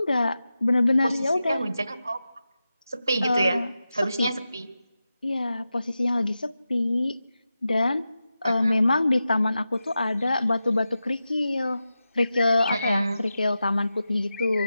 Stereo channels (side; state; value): both; inverted; correlation -0.92